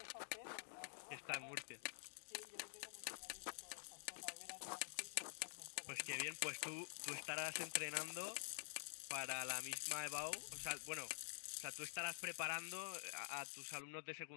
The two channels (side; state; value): right; silent; digital silence